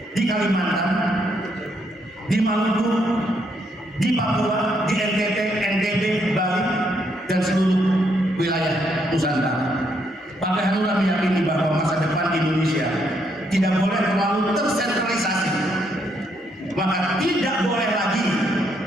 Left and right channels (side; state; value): both; normal; correlation 0.74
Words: di Kalimantan, di Maluku, di Papua, di NTT, NTB, Bali, dan seluruh wilayah Nusantara. Partai Hanura meyakini bahwa masa depan Indonesia tidak boleh terlalu tersentralisasi, maka tidak boleh lagi